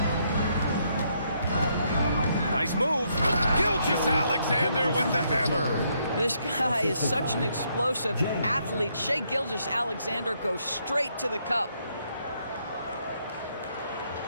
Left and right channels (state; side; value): inverted; both; correlation -0.74